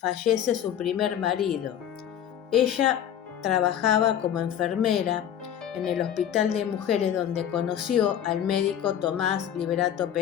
su primer marido. Ella trabajaba como enfermera en el Hospital de Mujeres, donde conoció al médico Tomás Liberato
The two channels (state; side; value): quieter; right; 9.9 dB